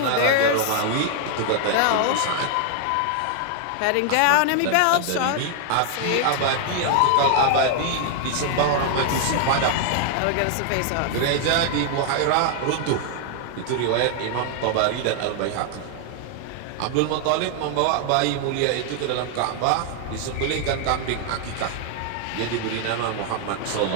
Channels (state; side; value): different; both; correlation 0.00